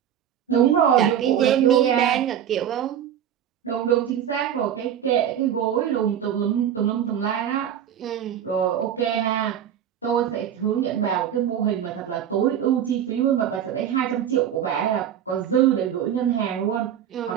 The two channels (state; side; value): quieter; left; 9.7 dB